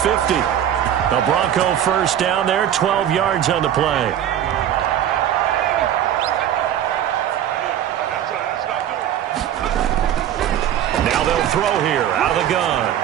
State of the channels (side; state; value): left; quieter; 10.6 dB